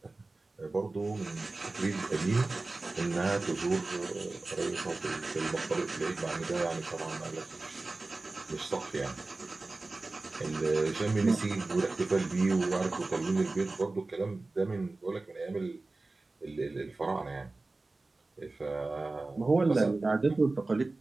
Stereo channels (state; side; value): quieter; left; 3.3 dB